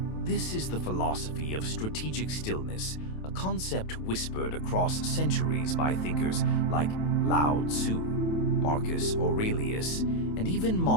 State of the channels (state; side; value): late; right; 27 ms